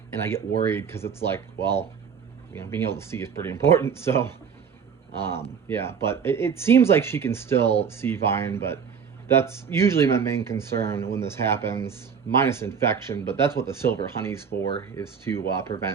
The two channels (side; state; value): left; quieter; 6.8 dB